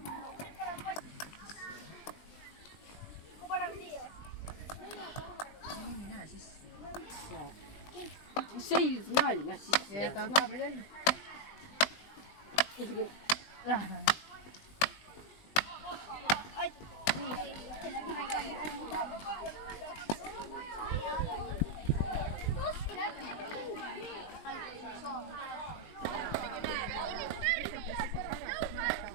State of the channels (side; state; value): right; late; 20 ms